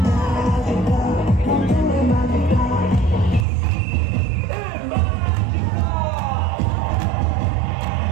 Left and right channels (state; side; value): drops out; left; at 3.5 s